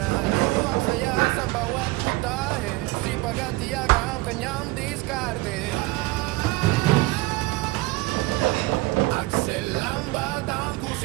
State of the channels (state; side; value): quieter; left; 21.1 dB